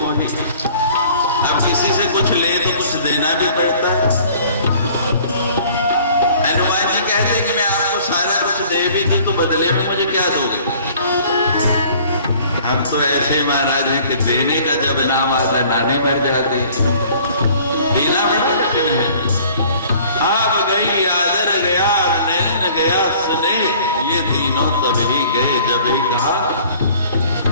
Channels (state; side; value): inverted; both; correlation -0.52